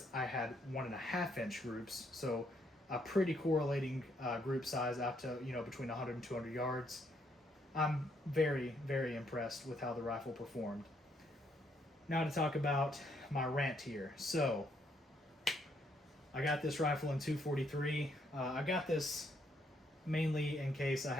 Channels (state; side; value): normal; both; correlation 0.73